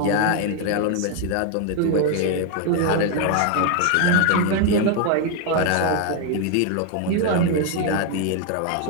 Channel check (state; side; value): different; both; correlation 0.01